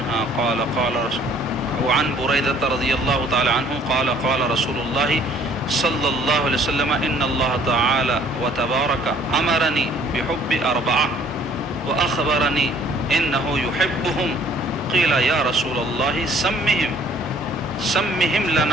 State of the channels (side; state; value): both; normal; correlation 0.58